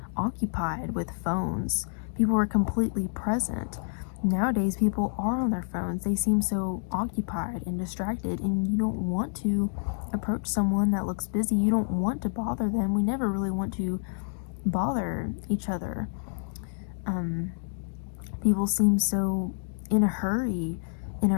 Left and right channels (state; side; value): silent; right; digital silence